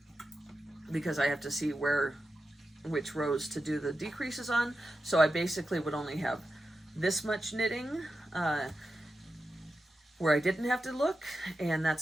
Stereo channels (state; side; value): normal; both; correlation 0.90